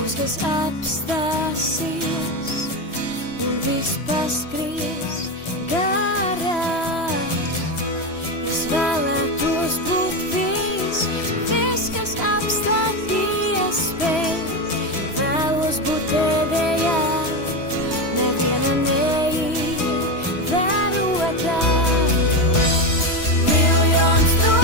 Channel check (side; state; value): right; late; 3.0 ms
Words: kas apstāsies un viss paskries garām. Es vēlētos būt viss, kas apstāties spēj. Vēlos būt pēdējā, neviena neievērotā. Miljons